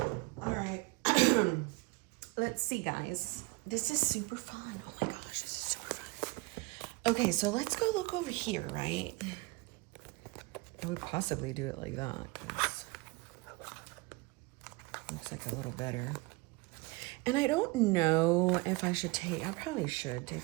All right. Let's see, guys. This is super fun. Oh my gosh, this is super fun. Okay, so let's go look over here, right? I would possibly do it like that, because it looks like a little better. And I don't know if I should take, I probably should take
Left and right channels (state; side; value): quieter; left; 24.6 dB